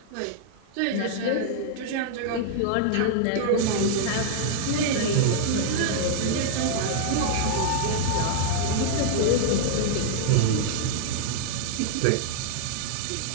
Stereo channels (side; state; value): both; different; correlation -0.01